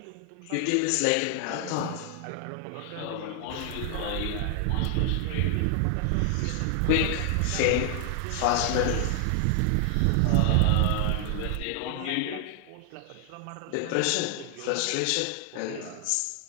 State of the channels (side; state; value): both; different; correlation 0.00